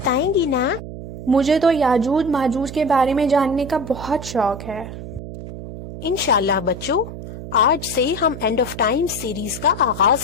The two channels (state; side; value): noise; right; hum, 11 dB below the sound